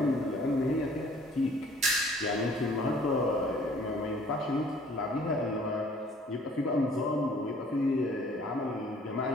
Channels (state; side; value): normal; both; correlation 0.55